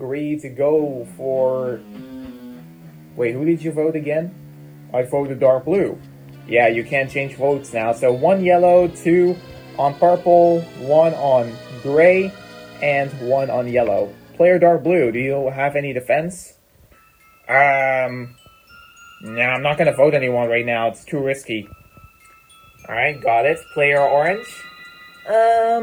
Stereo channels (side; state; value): both; identical; correlation 1.00